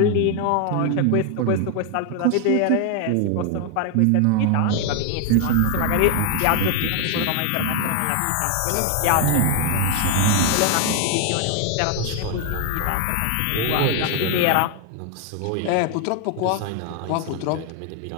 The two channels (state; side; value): different; both; correlation 0.01